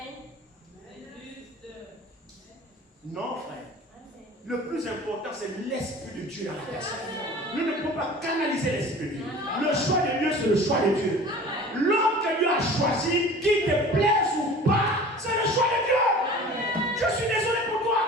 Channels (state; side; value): normal; both; correlation 0.42